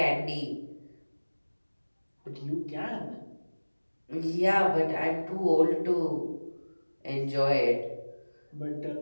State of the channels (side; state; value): both; inverted; correlation -1.00